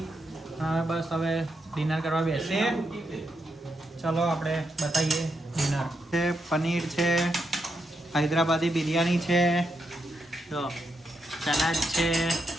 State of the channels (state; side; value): normal; both; correlation 0.82